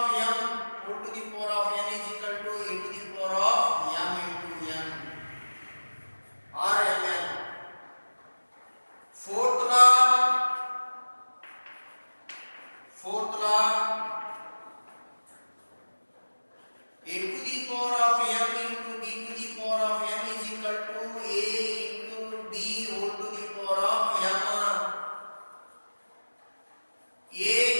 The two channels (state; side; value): inverted; both; correlation -1.00